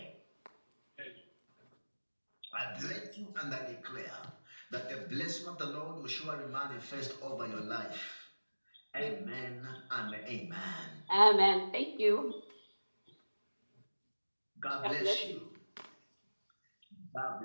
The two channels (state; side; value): inverted; both; correlation -1.00